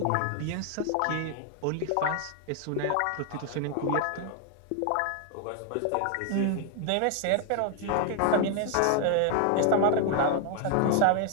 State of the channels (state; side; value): different; both; correlation 0.00